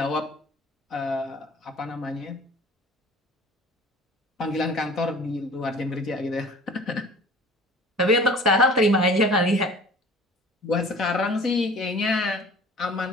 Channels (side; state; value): both; normal; correlation 0.45